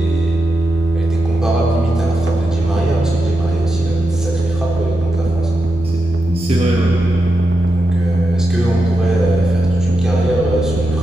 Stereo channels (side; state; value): both; normal; correlation 0.87